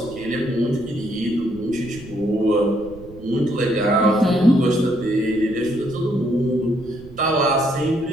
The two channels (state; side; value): noise; right; rumble, 19 dB below the sound